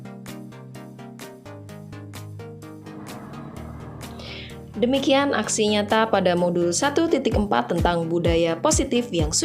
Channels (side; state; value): both; identical; correlation 1.00